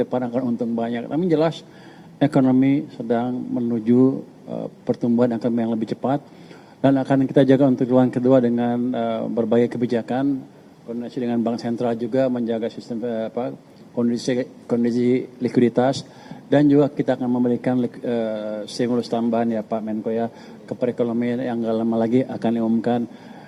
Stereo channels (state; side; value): identical; both; correlation 1.00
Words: akan untung banyak. Tapi jelas ekonomi sedang menuju pertumbuhan akan yang lebih cepat. Dan akan kita jaga untuk triwulan kedua dengan berbagai kebijakan, koordinasi dengan Bank Sentral juga menjaga sistem kondisi likuiditas, dan juga kita akan memberikan stimulus tambahan ya Pak Menko ya ke perekonomian yang nggak lama lagi akan diumumkan,